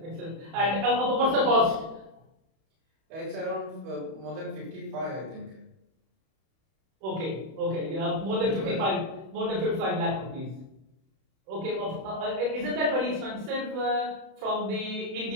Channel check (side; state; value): left; late; 31 ms